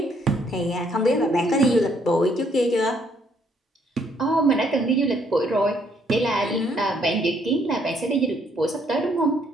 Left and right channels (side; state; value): both; normal; correlation 0.68